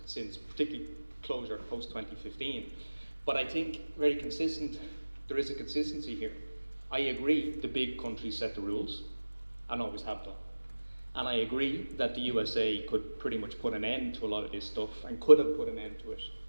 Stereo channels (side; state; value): both; inverted; correlation -1.00